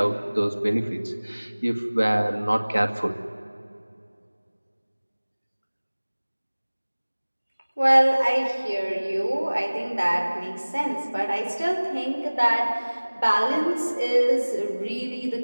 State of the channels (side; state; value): both; inverted; correlation -1.00